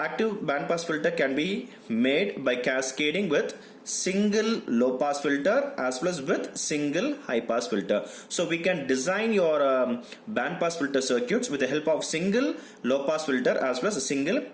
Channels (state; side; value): identical; both; correlation 1.00